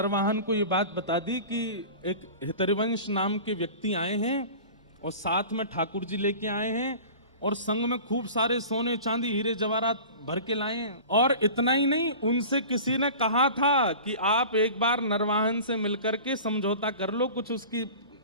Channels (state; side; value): inverted; both; correlation -0.38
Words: को ये बात बता दी कि एक हितरिवंश नाम के व्यक्ति आए हैं और साथ में ठाकुर जी लेके आए हैं और संग में खूब सारे सोने चांदी हीरे जवाहरात भर के लाए हैं। और इतना ही नहीं, उनसे किसी ने कहा था कि आप एक बार नरवाहन से मिलकर के समझौता कर लो, कुछ उसकी